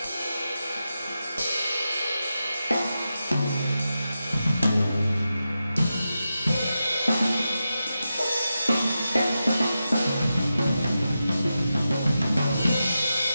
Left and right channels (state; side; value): inverted; both; correlation -0.90